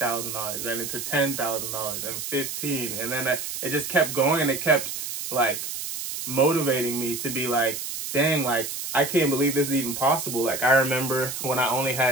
then into $10,000 and 15. And then it just kept going, and it kept like motivating me to be like, dang, like I can't believe this is even possible. Like I remember when I only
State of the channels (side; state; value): right; noise; hiss, 6 dB below the sound